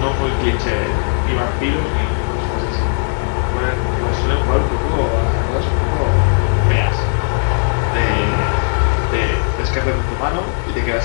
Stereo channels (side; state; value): right; silent; 68 dB below the other